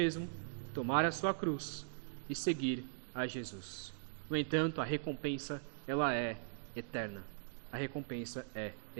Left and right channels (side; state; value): left; silent; digital silence